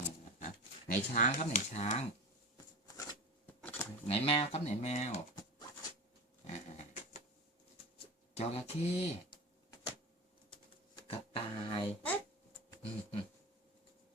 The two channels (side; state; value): both; normal; correlation 0.28